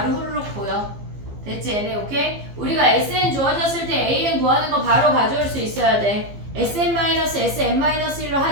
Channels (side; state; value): left; late; 15 ms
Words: 후루룩 보여. 됐지 얘네? 오케이? 우리가 sn 주어졌을 때 an 구하는 거 바로 가져올 수 있어야 돼. sn-sn-1로